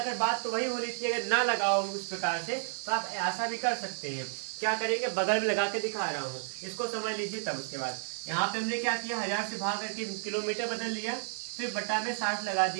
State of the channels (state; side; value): silent; left; 57 dB below the other